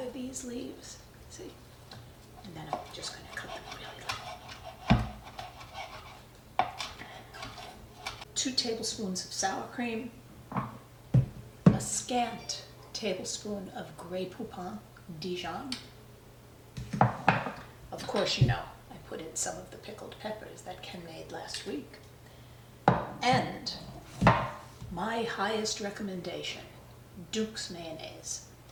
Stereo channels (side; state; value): both; identical; correlation 1.00